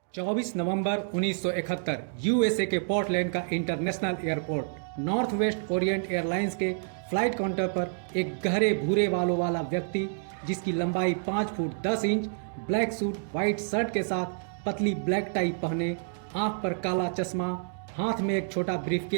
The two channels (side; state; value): left; silent; digital silence